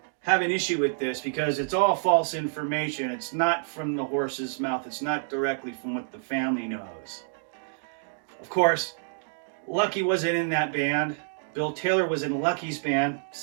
have an issue with this because it's all false information. It's not from the horse's mouth. It's not directly from what the family knows. Of course, Lucky wasn't in that band. Bill Taylor was in Lucky's band.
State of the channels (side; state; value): left; silent; digital silence